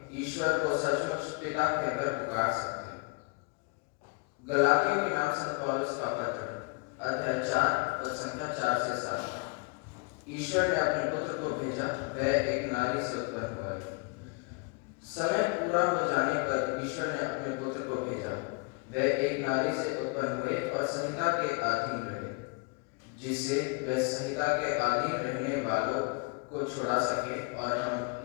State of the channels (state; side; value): quieter; right; 30.6 dB